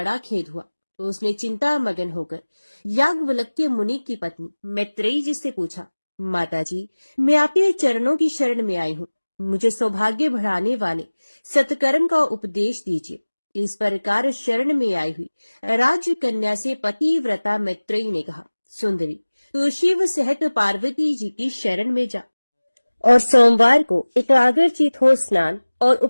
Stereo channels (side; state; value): both; inverted; correlation -1.00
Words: खेद हुआ। तो उसने चिंता मगन होकर याज्ञवल्क्य मुनि की पत्नी मैत्रेयी जी से पूछा, माताजी, मैं आपके चरणों की शरण में आई हूँ। मुझे सौभाग्य बढ़ाने वाले सत्कर्म का उपदेश दीजिए। इस प्रकार शरण में आई हुई राज कन्या से पतिव्रता मैत्रेयी ने कहा, सुंदरी, तू शिव सहित पार्वती जी की शरण में जा और सोमवार को एकाग्रचित हो स्नान और